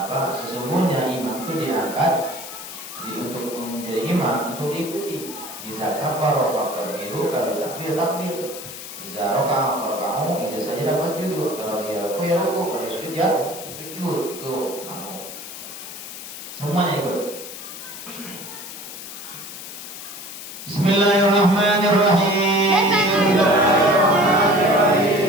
sesungguhnya imam itu diangkat untuk menjadi imam untuk diikuti. Iza kabara fakabbiru, kalau takbir takbir. Iza raka'a farka'u, iza sajada fasjudu. Kalau dia ruku ya ruku, kalau dia sujud ya sujud. Itu makmum. Semuanya ikut. Bismillahirrahmanirrahim.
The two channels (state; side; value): noise; left; hiss, 11 dB below the sound